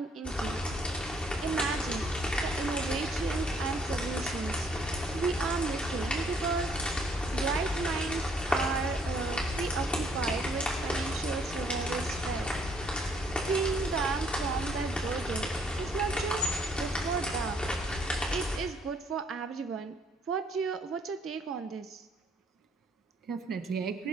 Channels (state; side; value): normal; both; correlation 0.66